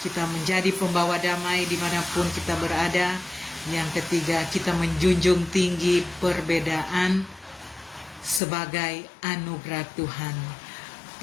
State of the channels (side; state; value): right; drops out; at 8.4 s